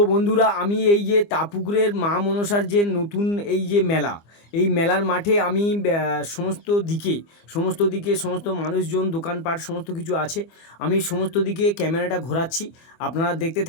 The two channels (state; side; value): late; right; 25 ms